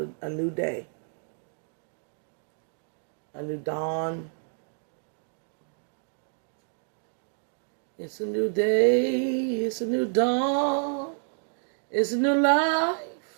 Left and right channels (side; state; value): left; silent; 59 dB below the other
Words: a new day. A new dawn. It's a new day. It's a new dawn. It's a new life.